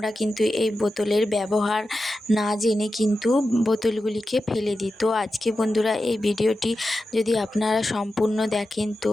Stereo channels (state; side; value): normal; both; correlation 0.91